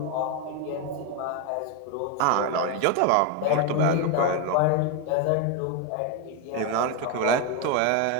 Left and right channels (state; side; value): different; both; correlation 0.02